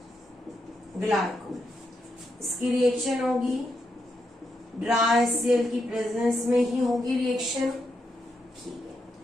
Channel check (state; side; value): normal; both; correlation 0.82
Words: ग्लाइकोल। इसकी रिएक्शन होगी ड्राई HCl की प्रेजेंस में ही होगी रिएक्शन। ठीक है,